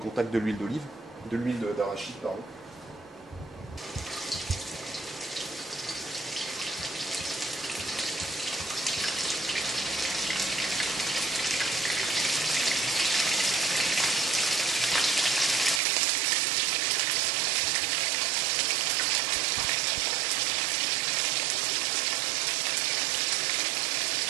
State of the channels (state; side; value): drops out; left; at 15.8 s